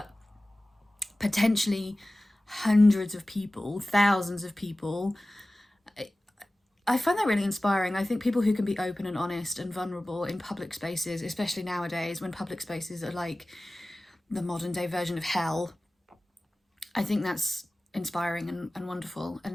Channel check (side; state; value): both; normal; correlation 0.97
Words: potentially hundreds of people, thousands of people. I find that really inspiring. I think people who can be open and honest and vulnerable in public spaces, especially nowadays when public spaces are like the modern day version of hell, I think that's inspiring and wonderful.